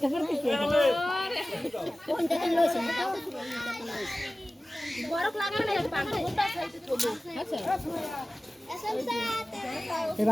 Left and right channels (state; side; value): normal; both; correlation 0.97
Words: করতেছে কোন জায়গায় লইছে গরম লাগে না পানি গোটা খাইতে চলো আচ্ছা